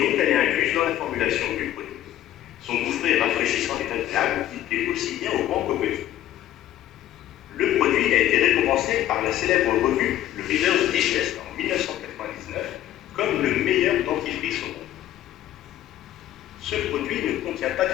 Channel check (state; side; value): quieter; right; 12.8 dB